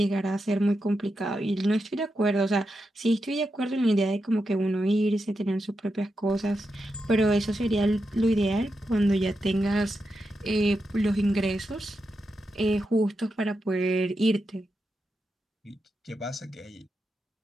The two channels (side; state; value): both; normal; correlation 0.87